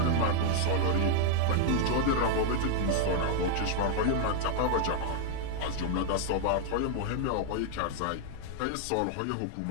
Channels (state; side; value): different; both; correlation 0.00